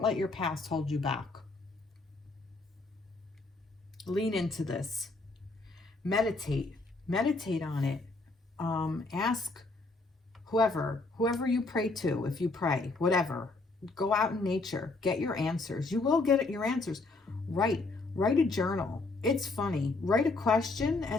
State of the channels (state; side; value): quieter; right; 3.4 dB